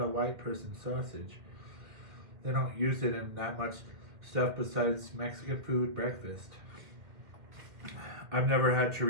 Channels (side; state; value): left; late; 2.2 ms